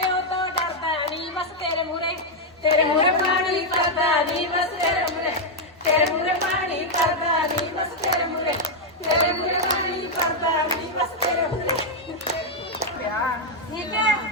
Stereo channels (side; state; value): both; normal; correlation -0.01